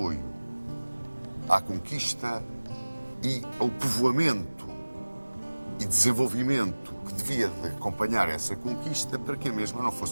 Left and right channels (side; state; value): both; inverted; correlation -1.00